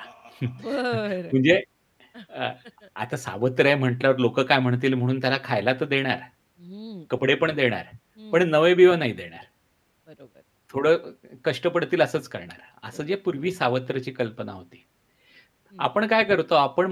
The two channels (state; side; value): identical; both; correlation 1.00